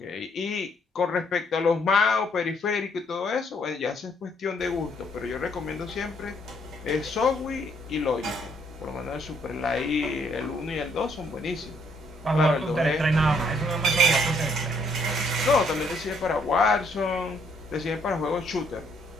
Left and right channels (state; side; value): normal; both; correlation 0.68